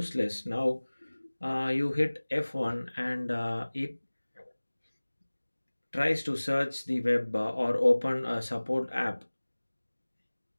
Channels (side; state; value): both; inverted; correlation -1.00